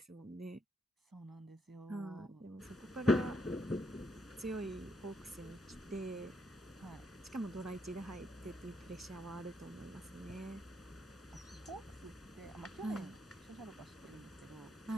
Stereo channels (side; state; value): both; normal; correlation 0.76